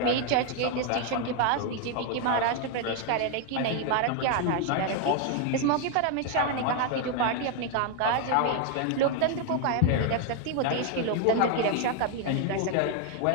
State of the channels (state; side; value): different; both; correlation 0.01